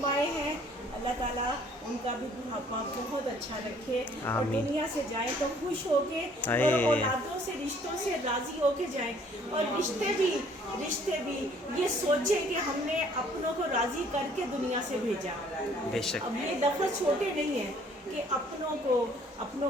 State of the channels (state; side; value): normal; both; correlation 0.59